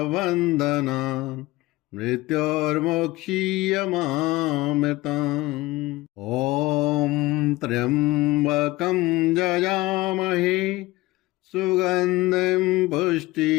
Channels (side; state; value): right; quieter; 19.7 dB